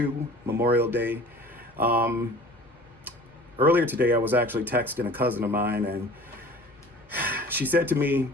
Memorial Day. Earlier today, I was actually texting a cousin of mine, and she said to me,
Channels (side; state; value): both; normal; correlation 0.44